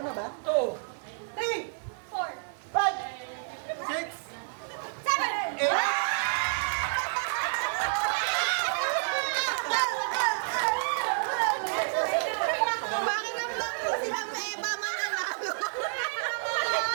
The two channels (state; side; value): silent; left; digital silence